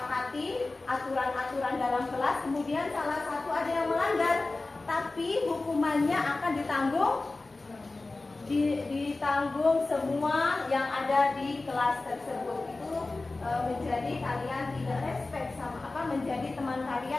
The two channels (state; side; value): quieter; right; 3.3 dB